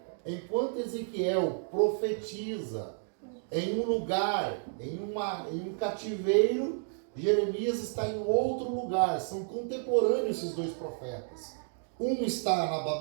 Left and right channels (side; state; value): left; silent; digital silence